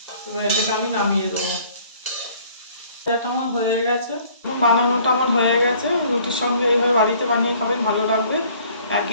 এবার এটাকে আমি নামিয়ে দেবো। ভাজাটা আমার হয়ে গেছে, বানানোটা আমার হয়ে গেছে। রুটির সঙ্গে এইভাবে বাড়িতে বানিয়ে খাবেন, ভালো লাগবে।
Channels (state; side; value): inverted; both; correlation -0.56